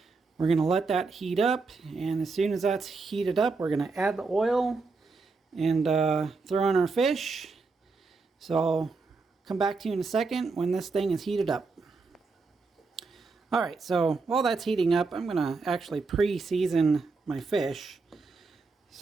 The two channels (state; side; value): quieter; left; 4.2 dB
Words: We're going to let that heat up, and as soon as that's heated up, we're going to add the oil and throw in our fish. So I'll come back to you in a second when this thing is heated up. Alright, so while that's heating up, I'm going to actually pre-season my fish.